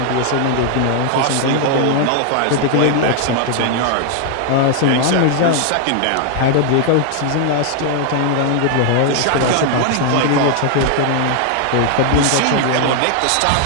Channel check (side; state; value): both; different; correlation 0.00